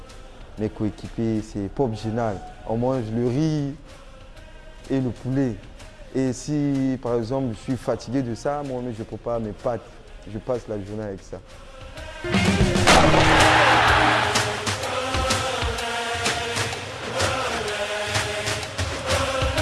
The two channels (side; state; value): both; identical; correlation 1.00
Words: mes coéquipiers, c'est pop génial. On mange le riz et le poulet. Et si, par exemple, je suis fatigué de ça, moi-même, je prépare mes pâtes. Je passe la journée avec ça.